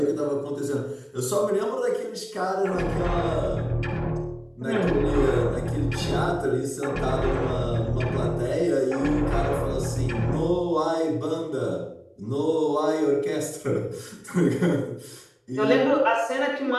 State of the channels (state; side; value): identical; both; correlation 1.00